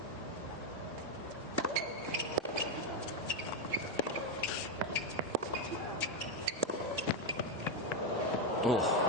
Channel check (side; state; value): both; normal; correlation 0.05